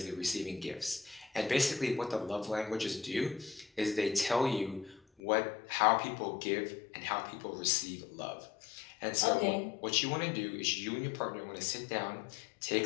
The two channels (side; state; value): right; drops out; at 5.0 s